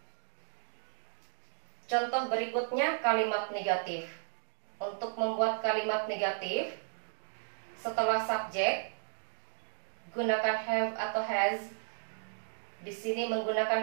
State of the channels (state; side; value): silent; left; digital silence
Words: Contoh berikutnya kalimat negatif. Untuk membuat kalimat negatif, setelah subjek, gunakan have atau has. Di sini menggunakan